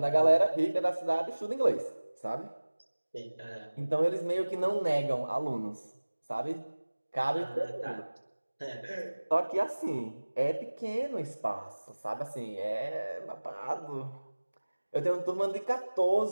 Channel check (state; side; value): inverted; both; correlation -1.00